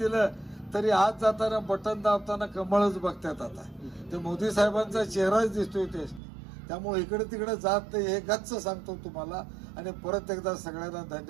तरी आज जाताना बटन दाबताना कमळच बघतात. आता ते मोदी साहेबांचा चेहराच दिसतोय ते. त्यामुळे इकडे तिकडे जात नाही हे गच्च सांगतो तुम्हाला आणि परत एकदा सगळ्यांना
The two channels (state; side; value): drops out; left; at 6.2 s